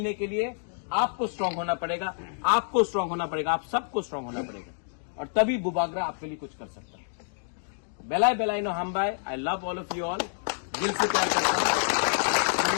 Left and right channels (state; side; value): silent; right; digital silence